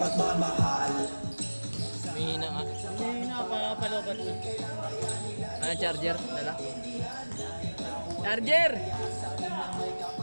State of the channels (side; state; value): both; inverted; correlation -1.00